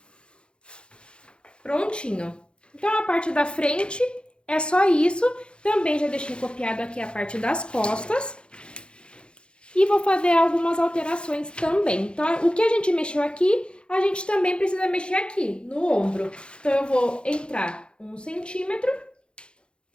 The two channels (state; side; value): late; right; 0.055 ms